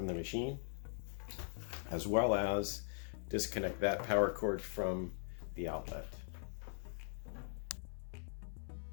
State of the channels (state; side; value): silent; right; 50 dB below the other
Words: the machine, as well as disconnect that power cord from the outlet.